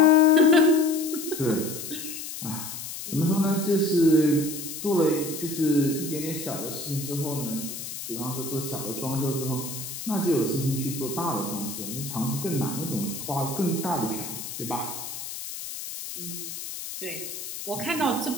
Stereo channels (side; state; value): left; noise; hiss, 8 dB below the sound